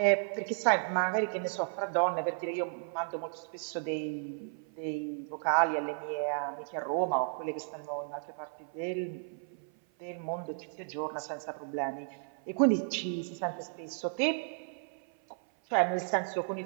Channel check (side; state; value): left; silent; 55 dB below the other